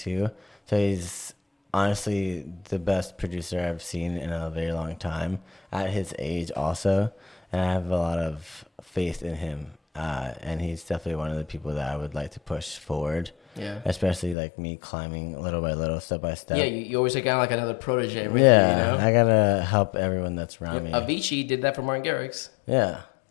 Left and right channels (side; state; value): right; drops out; at 14.4 s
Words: so he's honestly the best producer I've seen in a very long time at his age also, and I have a lot of faith in him. And he's definitely one of the people that I would like to push forward. Yeah. Especially like me climbing little by little, step by step. Yeah, you always take out like another protege. Right? Yeah, You know? I gotta help everyone that's around me. Avicii did that for Martin Garrix. Yeah,